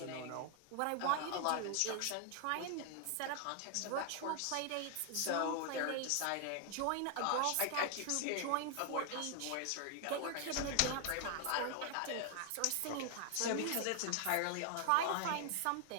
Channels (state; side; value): different; both; correlation 0.00